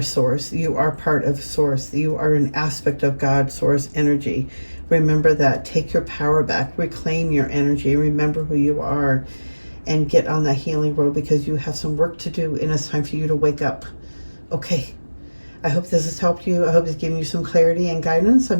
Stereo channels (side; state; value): both; inverted; correlation -1.00